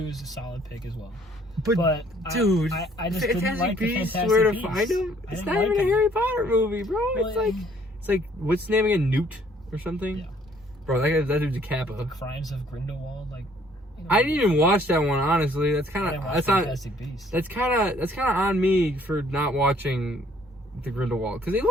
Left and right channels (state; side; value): normal; both; correlation 0.62